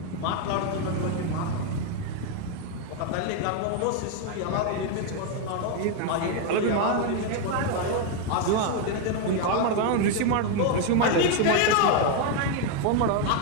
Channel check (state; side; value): different; both; correlation 0.01